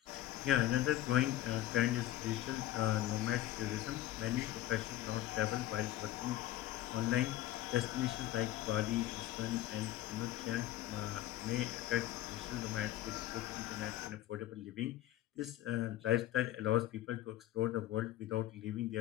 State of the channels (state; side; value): quieter; right; 14.2 dB